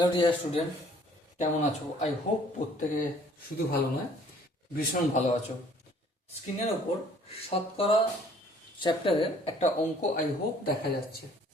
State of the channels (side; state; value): both; normal; correlation 0.57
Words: dear student, কেমন আছো? I hope প্রত্যেকে শুধু ভালো নয়, ভীষণ ভালো আছো। স্ক্রিনের ওপর শতকরা চ্যাপ্টারের একটা অঙ্ক আই হোপ দেখা যাচ্ছে,